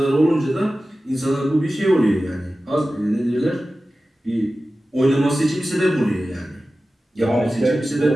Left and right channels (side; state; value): both; normal; correlation 0.95